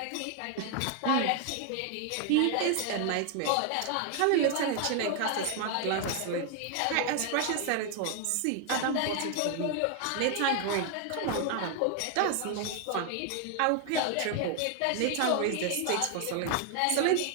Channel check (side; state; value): both; different; correlation 0.00